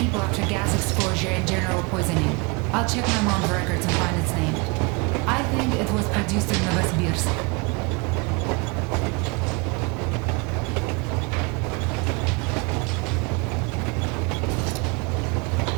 after gas exposure and general poisoning. I'll check my mom's records and find its name. I think it was produced in Novosibirsk.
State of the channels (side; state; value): left; quieter; 29.2 dB